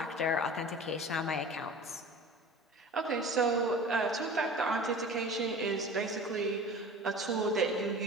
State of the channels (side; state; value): both; normal; correlation 0.39